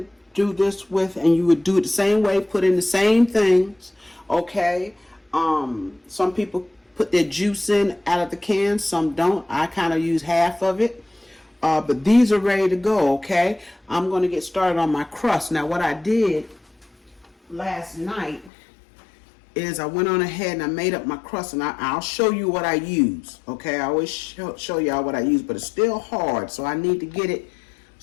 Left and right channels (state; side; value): drops out; right; at 18.5 s